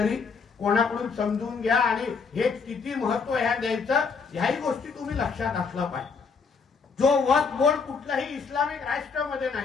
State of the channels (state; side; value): quieter; right; 5.2 dB